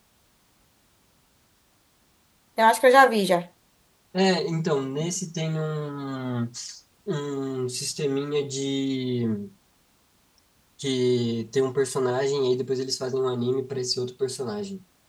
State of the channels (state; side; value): identical; both; correlation 1.00